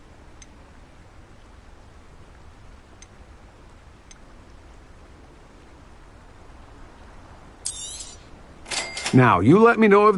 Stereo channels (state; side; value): identical; both; correlation 1.00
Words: Now, you let me know if